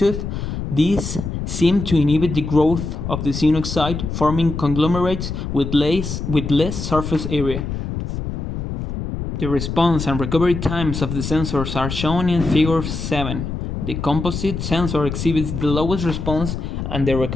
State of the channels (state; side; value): noise; left; rumble, 5 dB below the sound